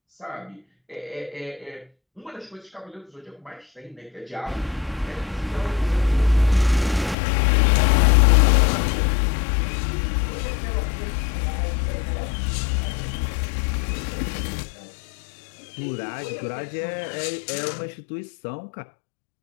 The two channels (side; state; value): right; drops out; at 7.2 s